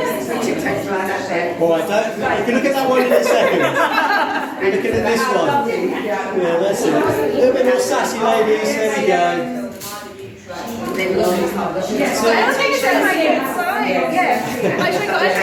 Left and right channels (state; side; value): identical; both; correlation 1.00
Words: Right, you can look at that one in a second. We're looking at this one. Yeah, that's it. A little bit more sassy, ladies. There we go.